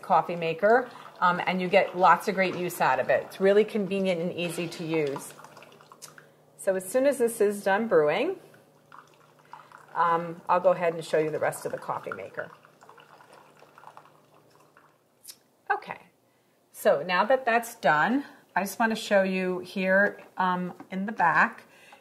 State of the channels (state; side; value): identical; both; correlation 1.00